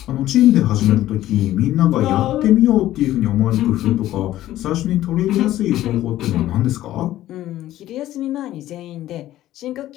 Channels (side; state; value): right; quieter; 14.1 dB